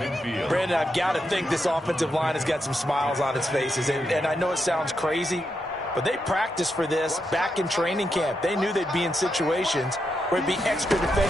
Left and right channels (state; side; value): normal; both; correlation 0.84